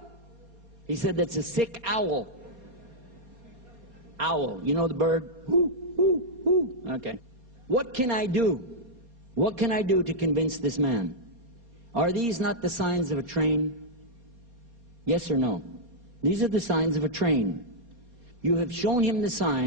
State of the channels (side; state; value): left; late; 4.2 ms